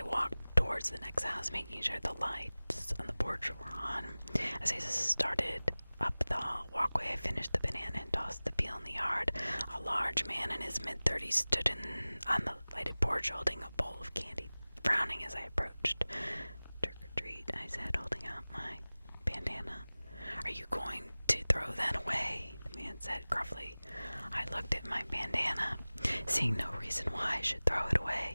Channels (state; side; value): inverted; both; correlation -0.99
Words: Towards the next house, making sure the lights on the porch were on. As I started up the walkway, I finished the banana and tossed the peel in the yard. A large man in his mid-30s stood on the lighted porch holding a bowl of candy, frowning as I approached. "Trick or treat," I said, holding out my bandana. Are you going to throw that away? The man said gruffly. I looked at my bandana, seeing no reason why I should throw it